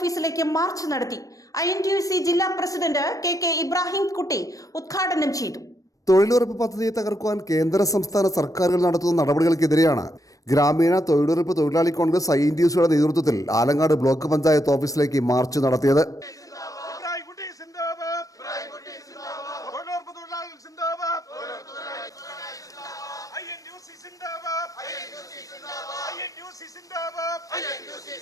മാർച്ച് നടത്തി. INTUC ജില്ലാ പ്രസിഡന്റ് KK ഇബ്രാഹിം കുട്ടി ഉദ്ഘാടനം ചെയ്തു. തൊഴിലുറപ്പ് പദ്ധതിയെ തകർക്കുവാൻ കേന്ദ്ര സംസ്ഥാന സർക്കാരുകൾ നടത്തുന്ന നടപടികൾക്കെതിരെയാണ് ഗ്രാമീണ തൊഴിലുറപ്പ് തൊഴിലാളി കോൺഗ്രസ് INTUCയുടെ നേതൃത്വത്തിൽ ആലങ്ങാട് ബ്ലോക്ക് പഞ്ചായത്ത് ഓഫീസിലേക്ക് മാർച്ച് നടത്തിയത്.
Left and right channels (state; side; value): late; right; 0.16 ms